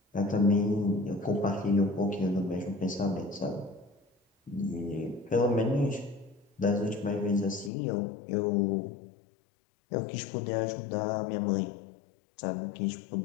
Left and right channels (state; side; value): drops out; right; at 7.7 s